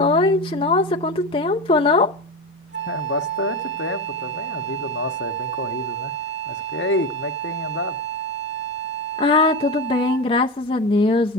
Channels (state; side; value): normal; both; correlation 0.19